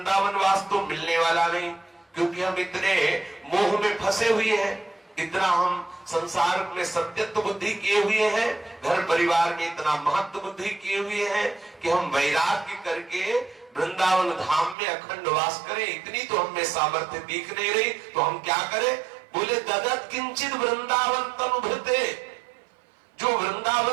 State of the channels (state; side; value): drops out; left; at 14.8 s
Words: वास तो मिलने वाला नहीं, क्योंकि हम इतने मोह में फंसे हुए हैं, इतना हम संसार में सत्यत्व बुद्धि किए हुए हैं, घर परिवार में इतना महत्व बुद्धि किए हुए हैं कि हम वैराग्य करके वृंदावन धाम में अखंड वास करें, इतनी तो हमें सामर्थ्य दिख नहीं रही। तो हम क्या करें? बोले ददत किंचित वृंदावन तनुभृते, जो